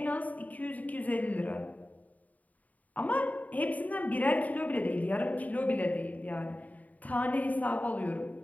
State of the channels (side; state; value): right; late; 0.073 ms